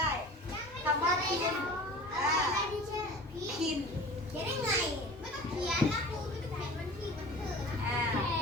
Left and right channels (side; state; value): both; normal; correlation 0.40